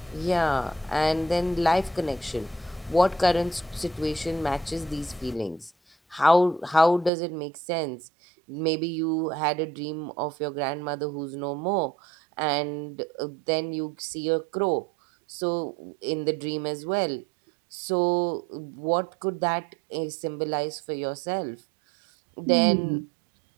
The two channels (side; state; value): left; drops out; at 7.1 s